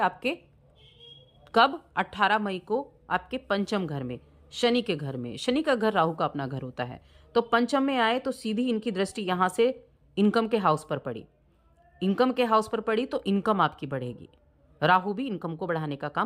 कब, 18 मई को आपके पंचम घर में, शनि के घर में। शनि का घर राहु का अपना घर होता है, तो पंचम में आए तो सीधी इनकी दृष्टि यहाँ से इनकम के हाउस पर पड़ी। इनकम के हाउस पर पड़ी तो इनकम आपकी बढ़ेगी, राहु भी इनकम को बढ़ाने का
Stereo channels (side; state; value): both; identical; correlation 1.00